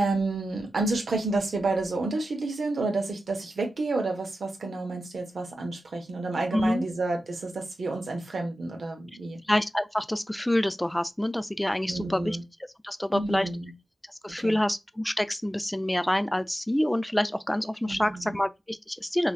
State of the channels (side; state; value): both; normal; correlation 0.93